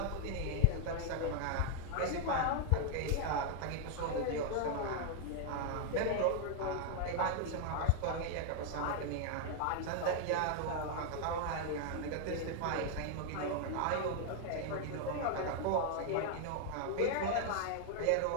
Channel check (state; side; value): different; both; correlation 0.00